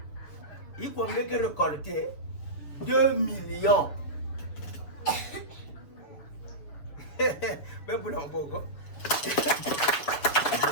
Iko ngeke récolter 2 millions. Bébou la mboko.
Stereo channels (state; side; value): late; right; 7.1 ms